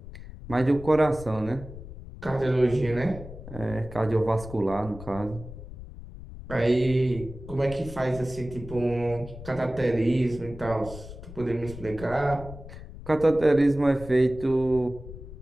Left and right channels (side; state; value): left; noise; rumble, 13 dB below the sound